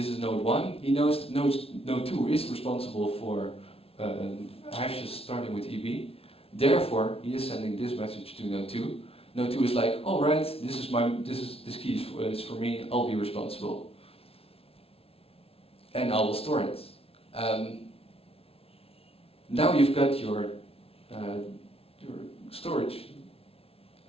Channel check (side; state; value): right; late; 0.28 ms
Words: is node 1. He knows node 2 is responsible for hashes starting with EB. Therefore, he is sending this message to node 2. Node 2 is like, all right, this key is for me. I'll be responsible, and I will store it. Now you've got your storage.